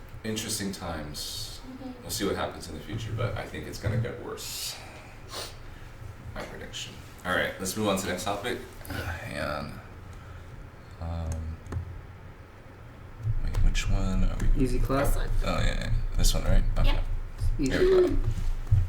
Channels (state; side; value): identical; both; correlation 1.00